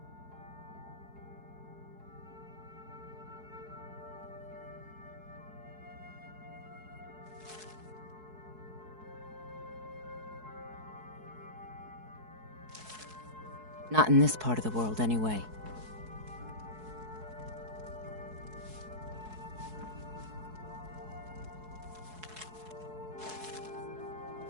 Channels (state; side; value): late; left; 4.7 ms